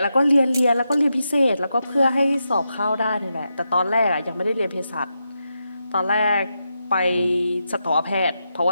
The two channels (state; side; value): inverted; both; correlation -0.86